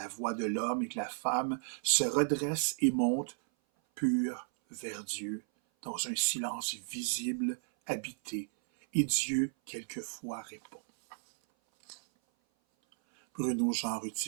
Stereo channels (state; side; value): silent; left; 55 dB below the other